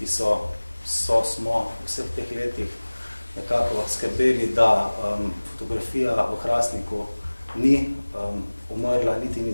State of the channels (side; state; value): both; inverted; correlation -1.00